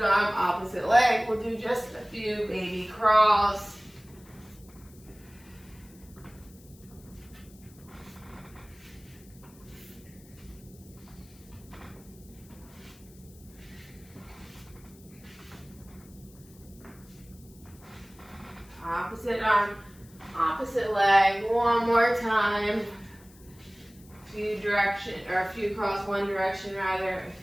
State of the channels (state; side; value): noise; left; hiss, 25 dB below the sound